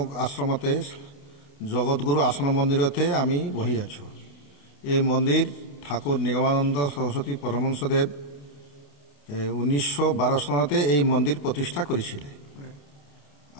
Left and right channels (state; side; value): late; right; 28 ms